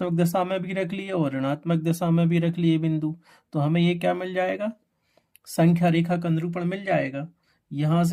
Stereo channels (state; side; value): identical; both; correlation 1.00